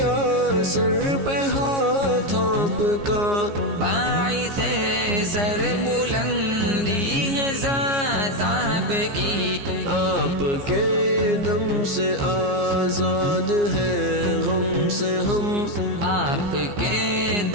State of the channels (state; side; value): late; left; 15 ms